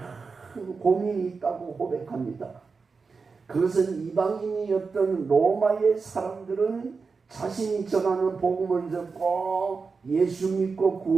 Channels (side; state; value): left; quieter; 4.8 dB